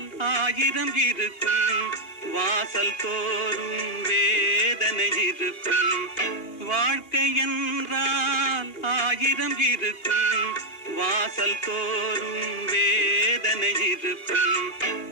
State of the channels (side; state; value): right; late; 2.8 ms